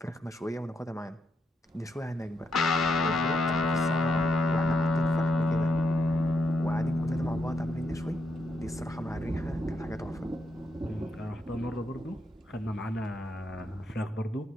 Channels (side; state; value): both; normal; correlation 0.81